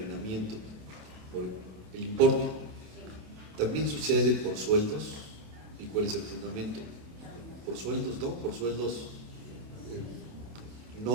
por el importe, también sucede por sueldos. ¿Y cuál es el fundamento? Por sueldos, ¿no? Por sueldos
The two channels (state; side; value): late; left; 27 ms